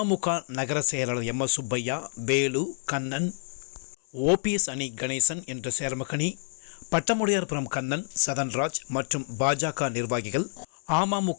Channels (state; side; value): silent; right; digital silence